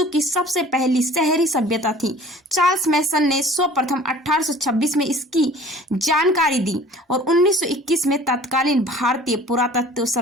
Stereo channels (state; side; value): normal; both; correlation 0.47